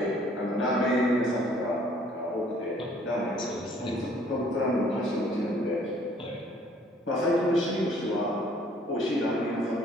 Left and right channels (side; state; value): both; normal; correlation 0.59